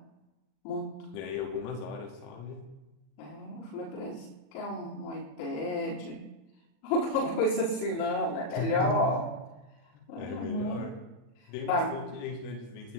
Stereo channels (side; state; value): right; late; 39 ms